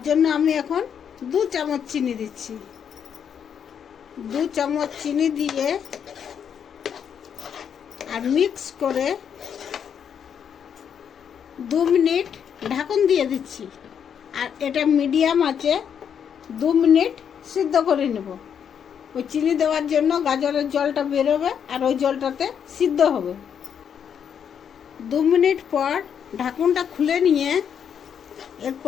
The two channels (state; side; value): quieter; right; 8.0 dB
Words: জন্য আমি এখন 2 চামচ চিনি দিচ্ছি। 2 চামচ চিনি দিয়ে আর মিক্স করে 2 মিনিট ঢাকন দিয়ে দিচ্ছি। আর এটা মিডিয়াম আছে 2 মিনিট সিদ্ধ করে নেব। ওই চিনি দেওয়ার জন্য গাজরের জলটা বেরোবে আর ওই জলটাতে সিদ্ধ হবে। 2 মিনিট পর ঢাকনটা খুলে নিয়ে